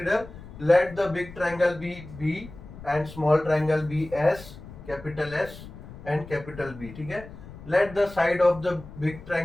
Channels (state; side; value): noise; left; rumble, 16 dB below the sound